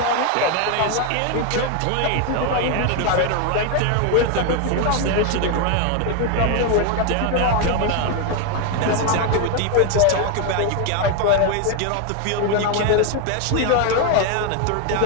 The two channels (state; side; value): different; both; correlation 0.01